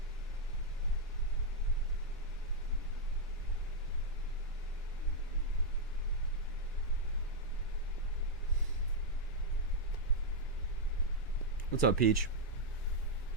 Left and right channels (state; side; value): normal; both; correlation -0.03